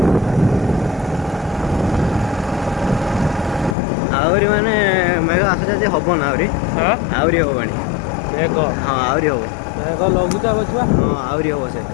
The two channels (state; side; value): drops out; right; at 3.8 s